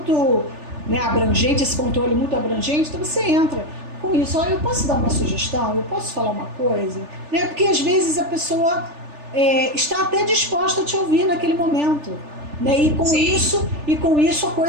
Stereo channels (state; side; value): late; left; 3.4 ms